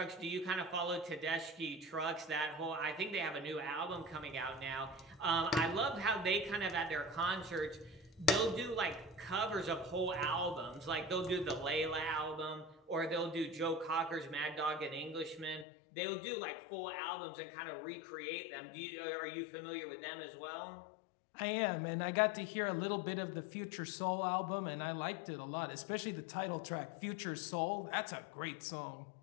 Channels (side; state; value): right; drops out; at 15.7 s